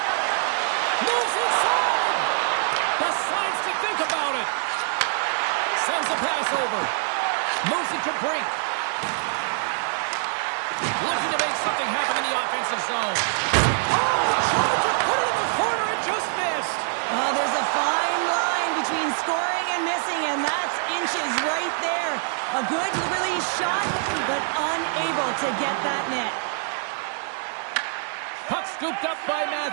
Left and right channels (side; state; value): left; silent; 62 dB below the other